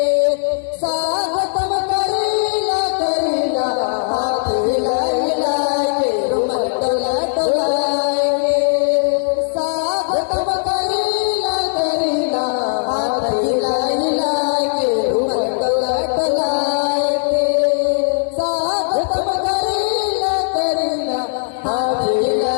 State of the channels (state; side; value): silent; right; digital silence